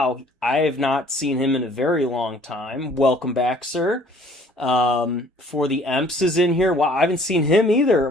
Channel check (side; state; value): both; normal; correlation 0.56